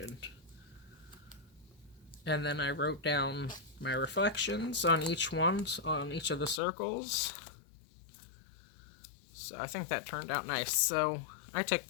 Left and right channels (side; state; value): right; drops out; at 6.6 s